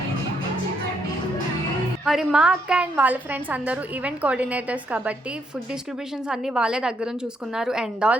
మరి మా అక్క అండ్ వాళ్ళ ఫ్రెండ్స్ అందరూ ఈవెంట్ కోఆర్డినేటర్స్ కాబట్టి ఫుడ్ డిస్ట్రిబ్యూషన్స్ అన్నీ వాళ్ళే దగ్గరుండి చూసుకున్నారు అండ్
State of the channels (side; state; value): both; normal; correlation 0.74